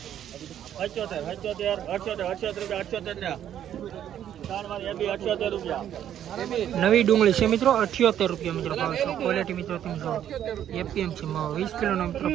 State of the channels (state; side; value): quieter; left; 10.4 dB